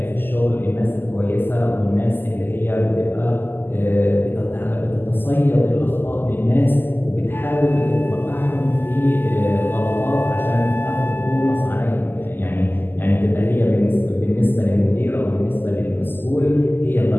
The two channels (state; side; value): late; right; 0.094 ms